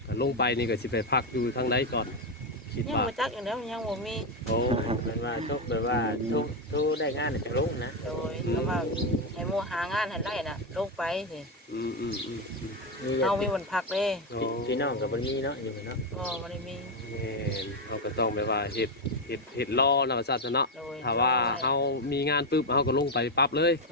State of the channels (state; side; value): normal; both; correlation 0.06